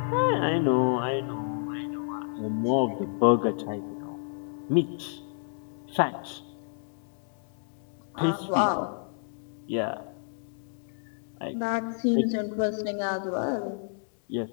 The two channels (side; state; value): right; silent; digital silence